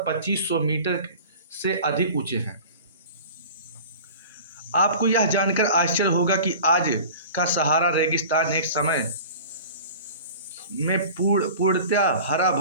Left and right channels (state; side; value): inverted; both; correlation -0.40